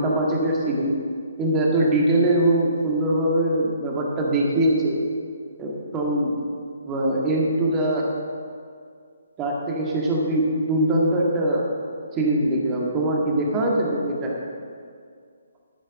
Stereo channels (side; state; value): both; inverted; correlation -0.54